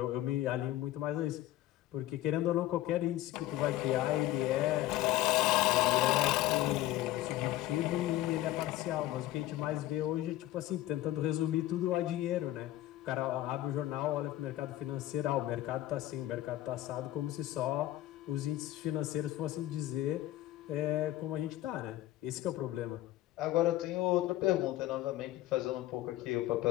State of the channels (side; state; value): right; quieter; 15.0 dB